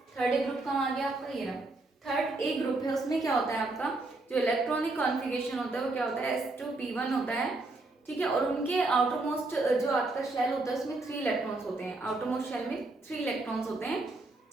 थर्ड ए ग्रुप कहाँ आ गया आपका, ये रहा थर्ड ए ग्रुप है। उसमें क्या होता है आपका जो इलेक्ट्रॉनिक कॉन्फ़िगरेशन होता है वो क्या होता है, S2P1 होता है। ठीक है, और उनके आउटर मोस्ट जो आपका शेल होता है उसमें 3 इलेक्ट्रॉन्स होते हैं। आउटर मोस्ट शेल में 3 इलेक्ट्रॉन्स होते हैं।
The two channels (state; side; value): quieter; left; 3.1 dB